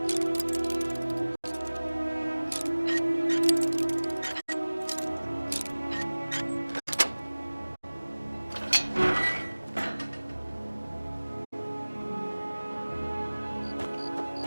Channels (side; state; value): both; inverted; correlation -1.00